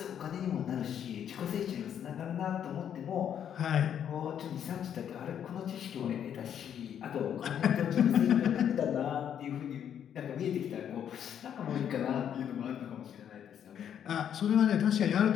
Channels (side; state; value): right; quieter; 9.1 dB